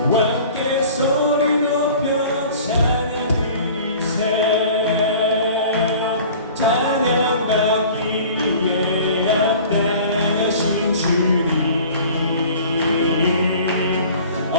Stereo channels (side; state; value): both; inverted; correlation -0.45